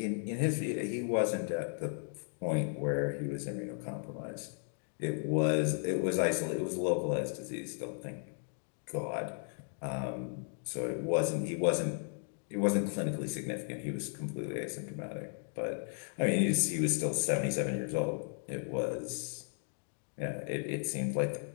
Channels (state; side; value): silent; right; 54 dB below the other